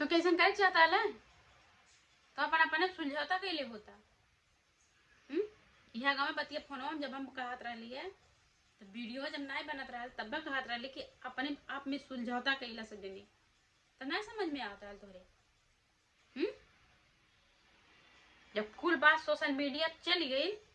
कैसे कर चाहता है तो अपन अपने सुलझौता कैले होता। यह गाँव में बतिया फोनवा में जब हम कहत रही है तो वीडियो जब नहीं बनत रहा तब कहत रही कि अपने आप में सुलझौता कैला से देने तो नहीं समझ में आता है तोहरे। जब कुल बात सोशल मीडिया चली गई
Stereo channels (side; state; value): both; identical; correlation 1.00